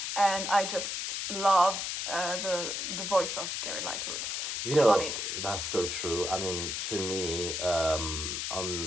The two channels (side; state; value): left; noise; hiss, 2 dB below the sound